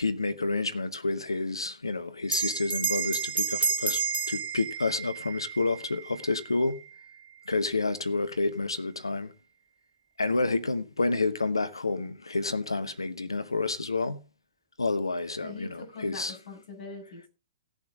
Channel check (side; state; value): both; inverted; correlation -0.74